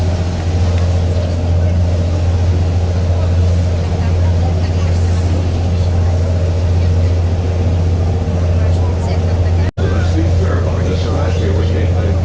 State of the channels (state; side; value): identical; both; correlation 1.00